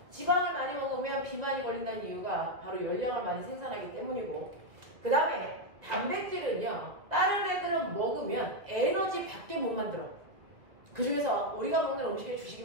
지방을 많이 먹으면 비만이 걸린다는 이유가 바로 열량을 많이 생산하기 때문이고 그 다음에 단백질은요. 다른 애들은 먹으면 에너지 밖에 못 만들어. 그 중에서 우리가 먹는 음식의 주식이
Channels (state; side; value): late; left; 1.8 ms